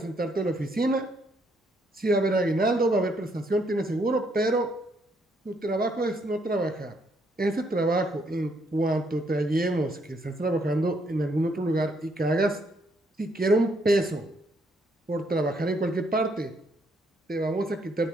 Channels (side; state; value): both; normal; correlation 0.72